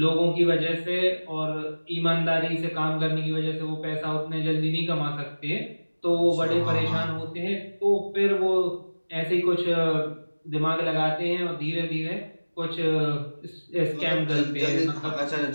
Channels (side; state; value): both; inverted; correlation -1.00